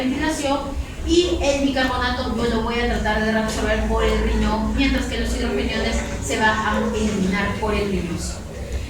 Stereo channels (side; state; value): both; identical; correlation 1.00